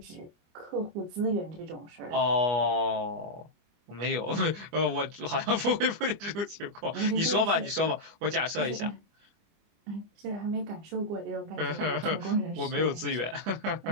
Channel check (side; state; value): left; late; 25 ms